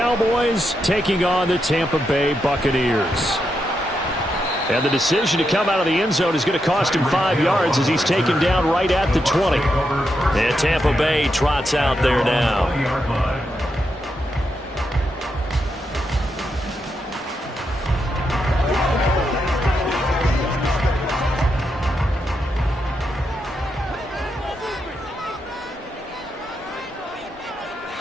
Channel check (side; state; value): both; normal; correlation 0.84